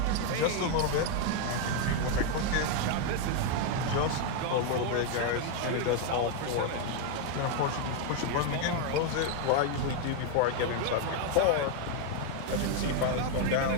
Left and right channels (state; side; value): different; both; correlation 0.01